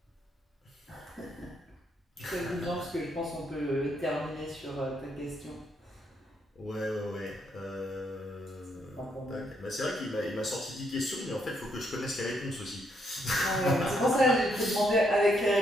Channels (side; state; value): both; normal; correlation 0.75